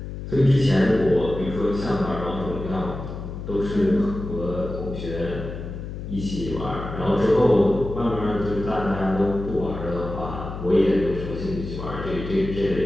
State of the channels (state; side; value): noise; left; hum, 8 dB below the sound